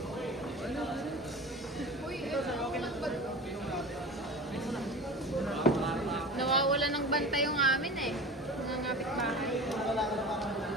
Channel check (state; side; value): normal; both; correlation 0.34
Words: Uy, nawawala ng bantay yung amin eh. Mga kapitbahay.